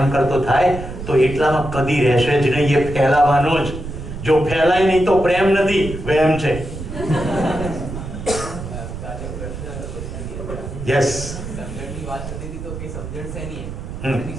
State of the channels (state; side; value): noise; right; rumble, 9 dB below the sound